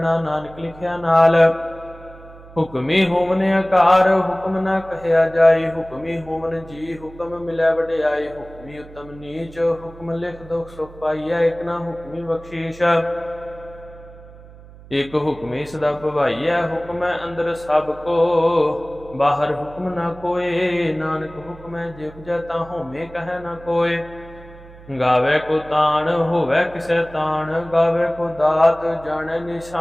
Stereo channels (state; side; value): noise; right; hum, 20 dB below the sound